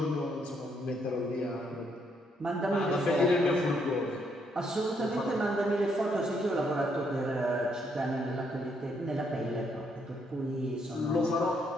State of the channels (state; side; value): normal; both; correlation 0.73